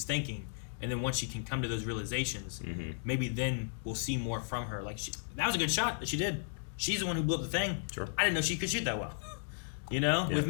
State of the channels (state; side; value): silent; right; digital silence